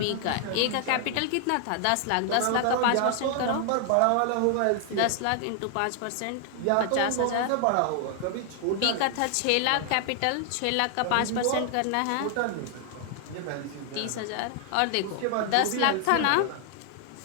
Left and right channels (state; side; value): different; both; correlation 0.00